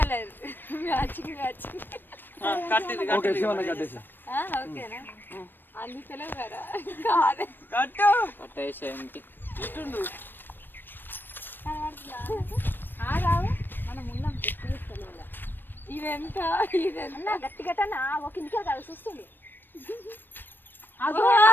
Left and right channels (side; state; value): right; late; 0.094 ms